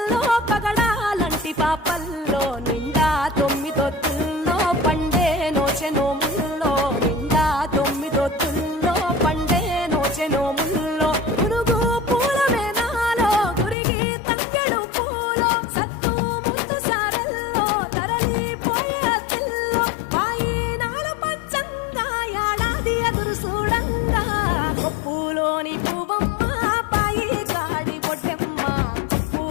పగడాలంటి పాపల్లో నిండా 9 ఒత్తుల్లో పండే నోచె నోముల్లో నిండా 9 ఒత్తుల్లో పండే నోచె నోముల్లో పురుగు పూల మేనాలో గురిగి తంగెడు పూలో సత్తు ముందు సారల్లో తరలిపోయే తిల్లో వాయినాల పంచంగా ఏడాది ఎదురు చూడంగా కొప్పులోని పువ్వమ్మ పాయి కాడి బొడ్డెమ్మ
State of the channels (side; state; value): right; drops out; at 13.8 s